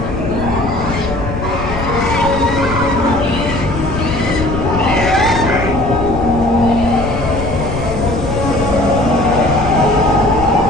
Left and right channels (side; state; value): left; noise; rumble, 6 dB below the sound